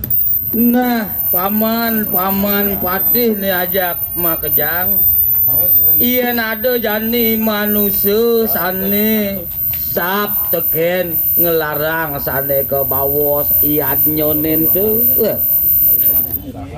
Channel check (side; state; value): both; identical; correlation 1.00